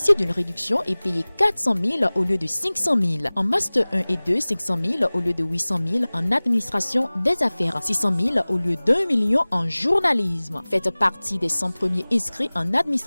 d'une réduction et payer 400 000 au lieu de 500 000. En master 1 et 2, 500 000 au lieu de 800 000 en administration des affaires, 600 000 au lieu d'1 million en journalisme. Faites partie des 100 premiers inscrits en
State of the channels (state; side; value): inverted; both; correlation -1.00